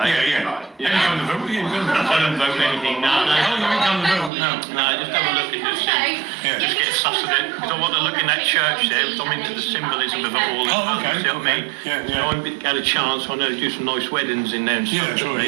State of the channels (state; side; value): drops out; left; at 4.3 s